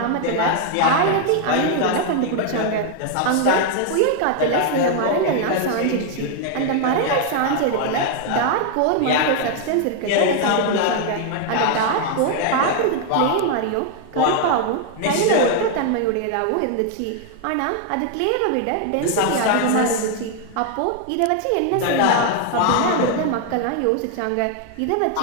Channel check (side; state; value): both; different; correlation 0.00